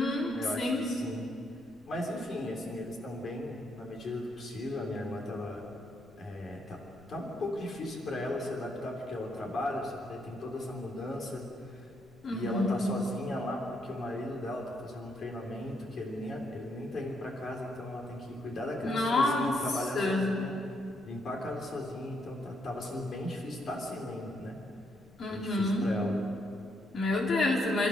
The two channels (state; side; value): noise; left; rumble, 25 dB below the sound